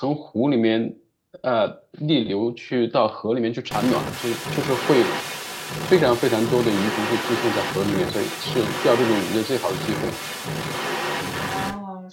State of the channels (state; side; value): identical; both; correlation 1.00